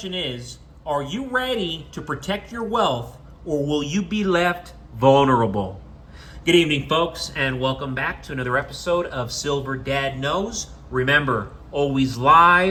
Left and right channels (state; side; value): identical; both; correlation 1.00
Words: is, are you ready to protect your wealth or will you be left vulnerable? Good evening, folks, and welcome back to another episode of Silver Dad Knows. Remember, always